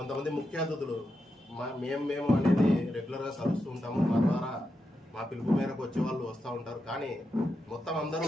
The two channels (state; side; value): normal; both; correlation 0.86